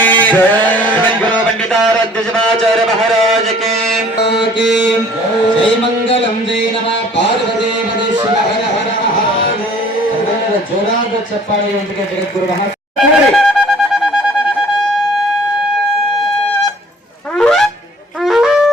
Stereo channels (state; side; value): normal; both; correlation 0.53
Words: पंडिताराध्य महाराज के जय मंगलम जय नमः पार्वती पदे शिव हर हर महादेव. जोराದ ಚಪ್ಪಾಳೆಯೊಂದಿಗೆ ಜಗದ್ಗುರು